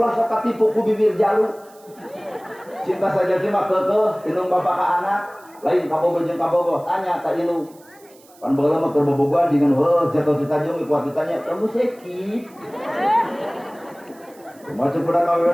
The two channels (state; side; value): noise; right; hiss, 27 dB below the sound